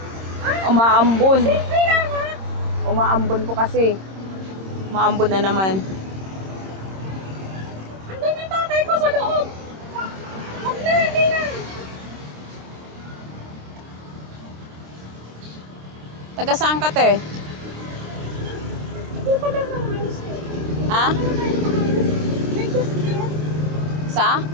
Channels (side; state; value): left; late; 26 ms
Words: Umaambon. Umaambon po kasi. Umaambon na naman. Andun yung tatay ko sa loob. Huwag na, hindi na. Taga saan ka, te? Hindi pa lang naman. Ha? May just there. Sa?